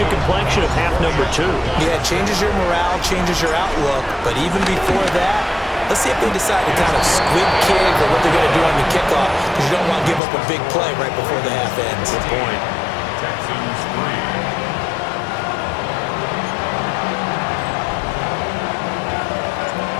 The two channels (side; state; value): right; drops out; at 10.2 s